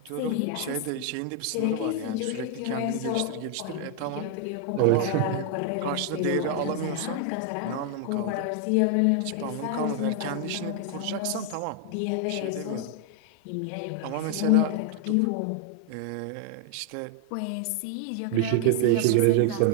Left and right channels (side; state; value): both; different; correlation 0.00